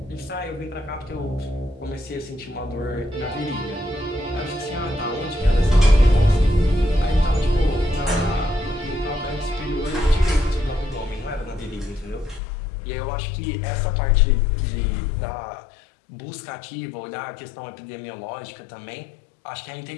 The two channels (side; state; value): right; drops out; at 12.4 s